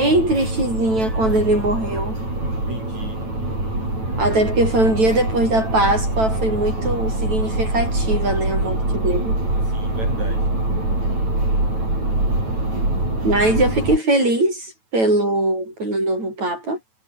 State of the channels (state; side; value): late; left; 9.1 ms